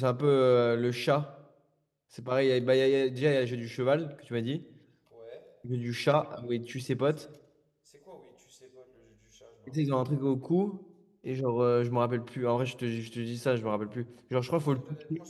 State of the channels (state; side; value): identical; both; correlation 1.00